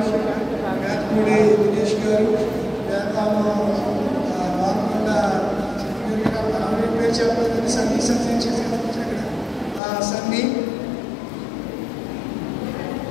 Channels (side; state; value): right; drops out; at 9.8 s